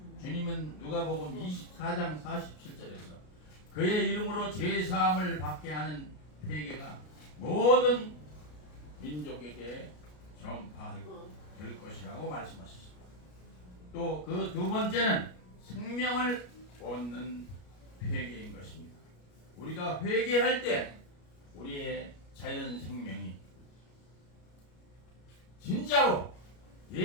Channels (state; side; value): late; right; 33 ms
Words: 주님은 누가복음 24장 47절에서 그의 이름으로 죄 사함을 받게 하는 회개가 모든 민족에게 전파될 것이라고 말씀하셨습니다. 또 그 두 번째는 생명을 얻는 회개인 것입니다. 우리가 회개할 때 우리의 자연 생명이 진짜로